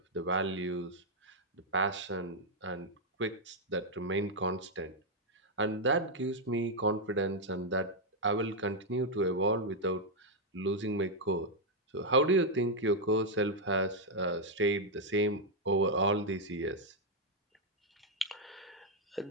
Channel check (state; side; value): normal; both; correlation -0.01